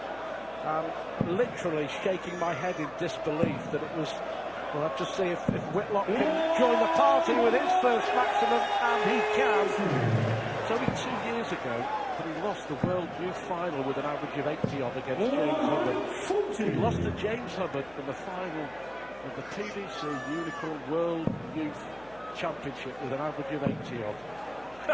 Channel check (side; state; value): left; noise; hum, 26 dB below the sound